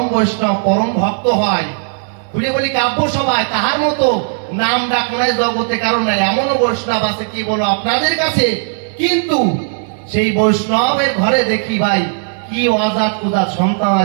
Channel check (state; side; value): silent; left; digital silence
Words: পরম ভক্ত হয়। খুলে বলি কাব্য সভায় তাহার মতো নাম ডাক নাই জগতে কারণ নাই, এমনও বৈষ্ণব আছে কি বলো আপনাদের কাছে, কিন্তু সেই বৈষ্ণবের ঘরে দেখি ভাই কি অজাত কুজাত সন্তান